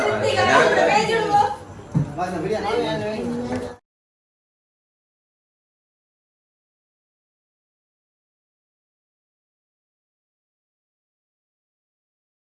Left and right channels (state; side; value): identical; both; correlation 1.00